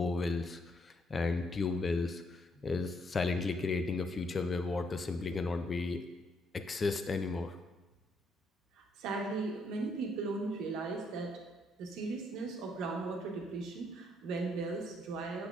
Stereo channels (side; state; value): both; normal; correlation 0.73